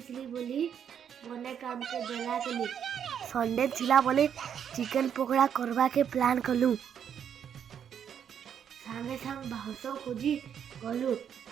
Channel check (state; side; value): quieter; left; 8.5 dB